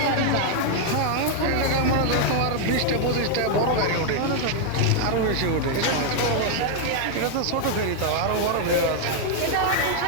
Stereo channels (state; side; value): different; both; correlation 0.00